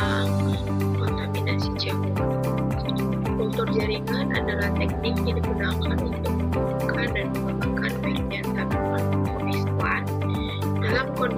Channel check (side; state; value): both; identical; correlation 1.00